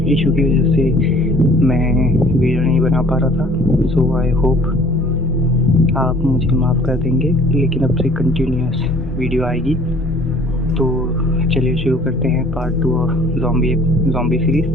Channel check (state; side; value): normal; both; correlation 0.53